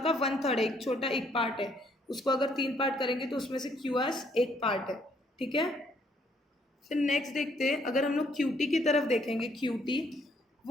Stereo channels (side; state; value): both; normal; correlation 0.68